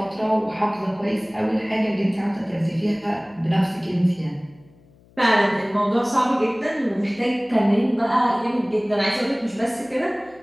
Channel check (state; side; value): noise; left; hum, 29 dB below the sound